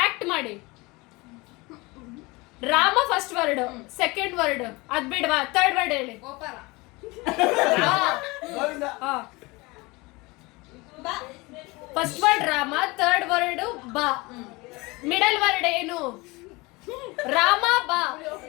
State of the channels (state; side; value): quieter; right; 24.1 dB